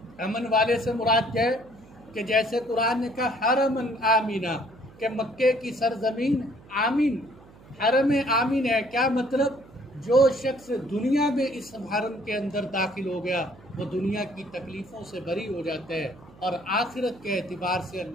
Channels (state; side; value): noise; right; hum, 23 dB below the sound